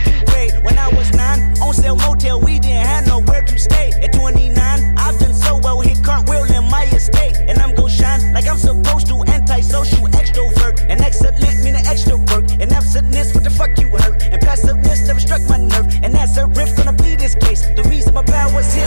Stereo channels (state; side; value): inverted; both; correlation -1.00